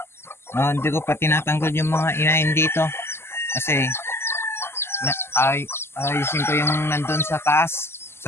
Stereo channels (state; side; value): late; right; 0.12 ms